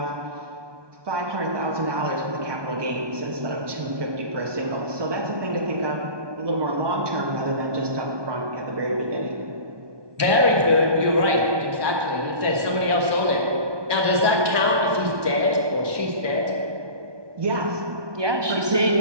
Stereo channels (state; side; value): late; left; 1.2 ms